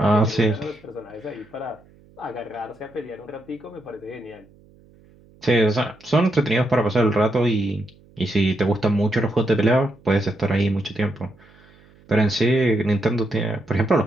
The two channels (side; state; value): right; noise; hum, 28 dB below the sound